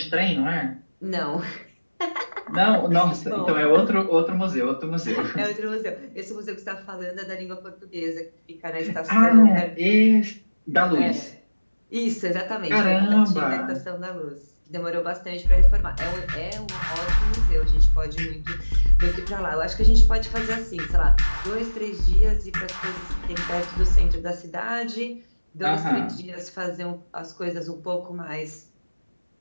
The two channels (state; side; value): inverted; both; correlation -1.00